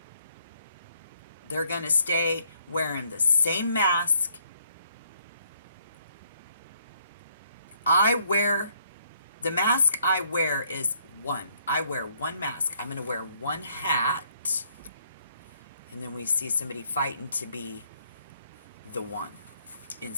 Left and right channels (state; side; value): inverted; both; correlation -0.69